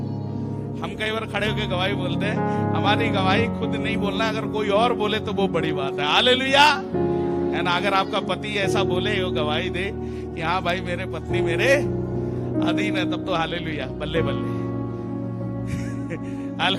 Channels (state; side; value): identical; both; correlation 1.00